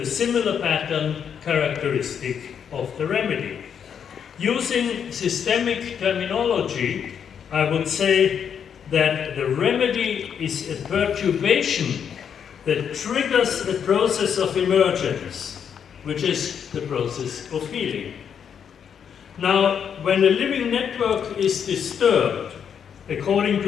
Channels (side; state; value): right; quieter; 7.8 dB